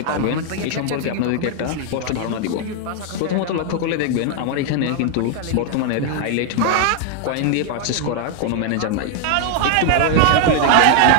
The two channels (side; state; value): both; different; correlation 0.00